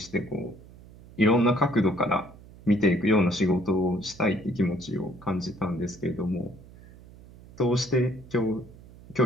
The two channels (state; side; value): noise; right; hum, 21 dB below the sound